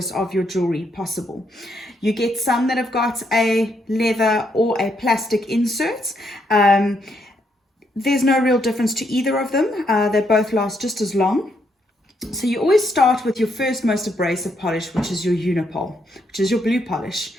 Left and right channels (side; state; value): both; normal; correlation 0.76